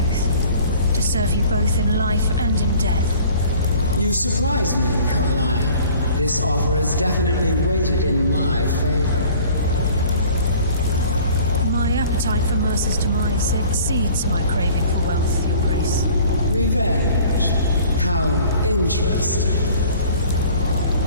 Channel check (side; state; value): both; inverted; correlation -0.50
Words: to serve you both in life and in death. You surprise me, Carlia. This offer is definitely weighted in my favor. My appetite for Mercer's demise exceeds my craving for wealth, Your Grace. Revenge. How interesting.